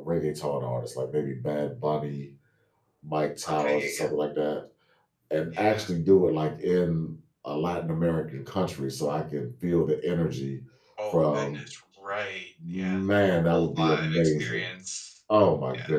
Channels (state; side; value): identical; both; correlation 1.00